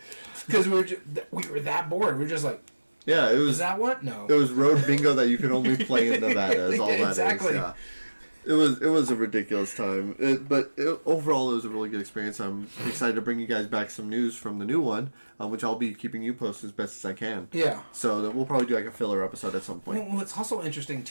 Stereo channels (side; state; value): both; inverted; correlation -1.00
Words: Because we were that bored. We were just like... Yeah, it was... Is that what? No. It was road bingo that you could only play in Nevada, is all that exactly. is. Yeah. It was a ridiculous time, but overall it was a really good experience. I'm excited to bring you guys back some news from the new one, which I'll be keeping you posted as best as I can. Yeah. So that we'll probably do like a filler episode at some point. Well, what's also interesting